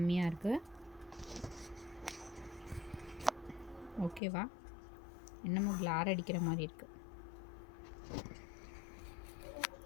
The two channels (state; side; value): drops out; right; at 4.2 s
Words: இருக்குது. ஓகேவா? என்னமோ கிளார் அடிக்கிற மாதிரி இருக்குது.